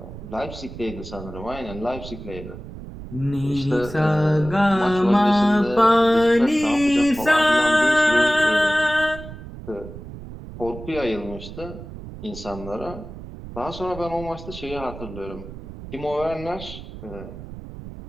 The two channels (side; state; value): right; noise; rumble, 13 dB below the sound